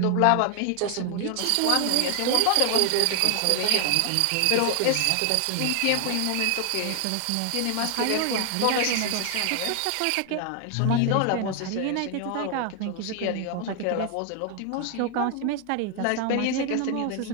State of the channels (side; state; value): both; different; correlation 0.00